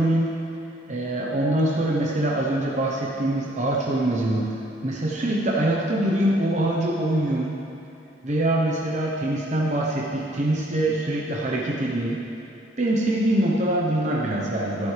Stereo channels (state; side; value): normal; both; correlation 0.62